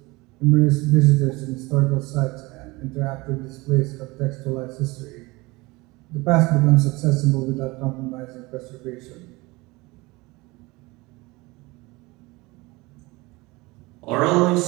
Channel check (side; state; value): left; quieter; 23.0 dB